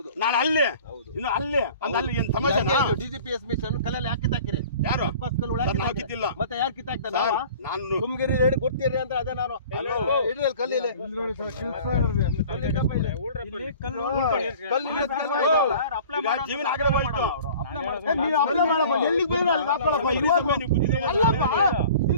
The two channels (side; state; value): both; inverted; correlation -0.46